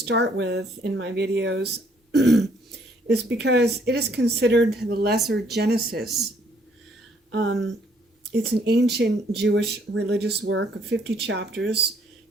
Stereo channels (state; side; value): normal; both; correlation 0.66